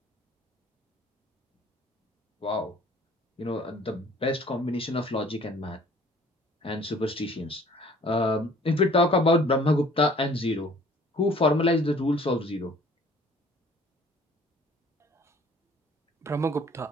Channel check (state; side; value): normal; both; correlation 0.54